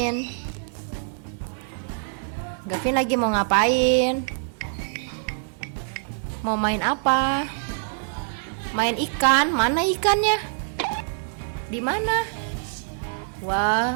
Gavin lagi mau ngapain? Mau main apa? Main ikan? Mana ikannya? Di mana?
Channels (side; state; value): left; silent; 62 dB below the other